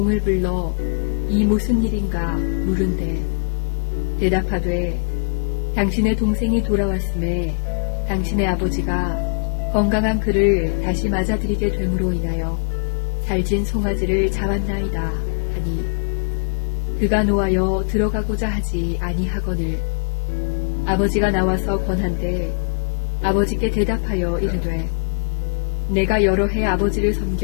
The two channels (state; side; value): silent; right; 60 dB below the other